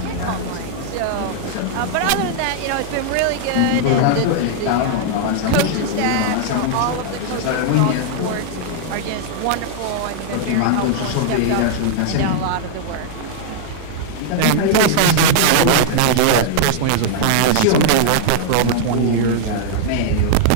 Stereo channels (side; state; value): both; different; correlation -0.01